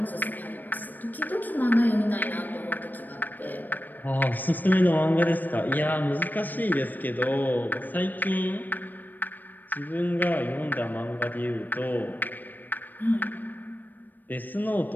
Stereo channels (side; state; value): right; late; 0.088 ms